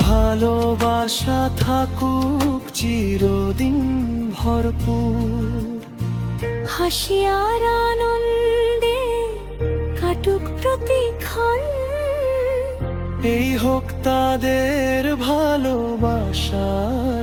ভালোবাসা থাকুক চিরদিন ভরপুর। হাসি আর আনন্দে কাটুক প্রতিক্ষণ, এই হোক তাদের ভালোবাসার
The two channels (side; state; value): both; identical; correlation 1.00